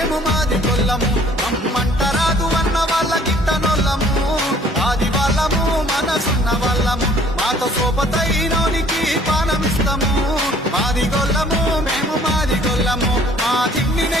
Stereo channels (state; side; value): normal; both; correlation 0.57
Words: మేము మాది గొల్లము రమ్మంటరాదు అన్న వాళ్ళ గిట్టనొల్లము ఆది వాళ్ళము మనసున్న వాళ్ళము మాతో సోపతైనోనికి పానమిస్తాము మాది గొల్లము మేము మాది గొల్లము మా తిండి